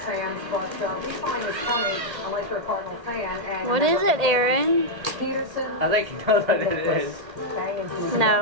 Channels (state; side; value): late; left; 1.8 ms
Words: but we find it funny unless you're a Cardinal fan. And what is it, Aaron? I think you know what it is.